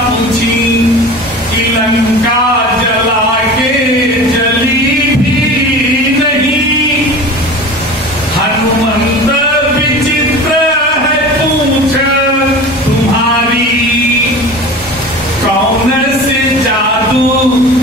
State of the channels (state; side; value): normal; both; correlation 0.36